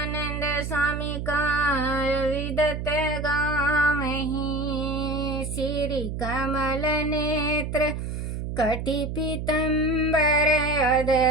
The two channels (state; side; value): noise; right; hum, 5 dB below the sound